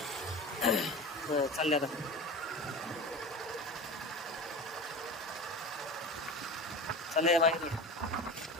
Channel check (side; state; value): both; normal; correlation 0.31